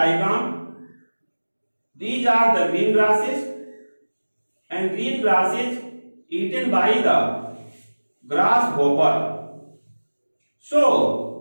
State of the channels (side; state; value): both; inverted; correlation -1.00